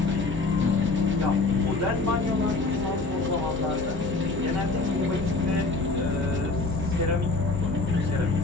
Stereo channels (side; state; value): right; quieter; 3.5 dB